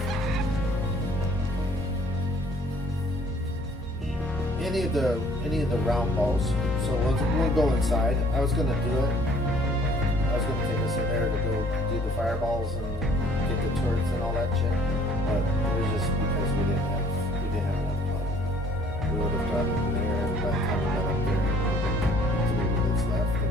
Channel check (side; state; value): both; normal; correlation 0.57